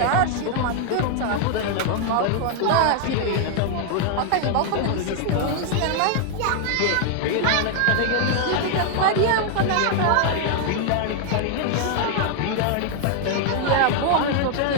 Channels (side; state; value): both; different; correlation 0.00